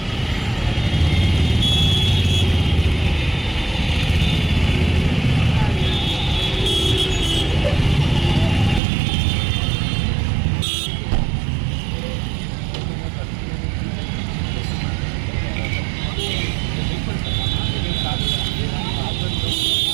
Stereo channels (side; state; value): left; drops out; at 8.8 s